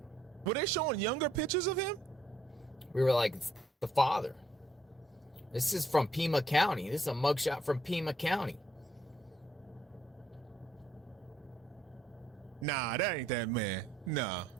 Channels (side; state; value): both; normal; correlation 0.70